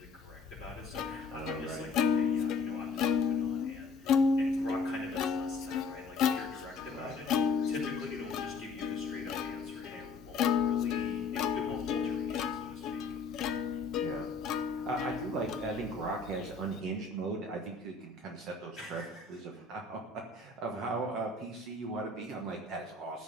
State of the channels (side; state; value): right; quieter; 4.3 dB